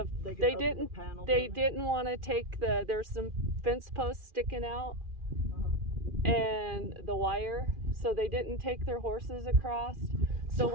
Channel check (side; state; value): left; late; 2.4 ms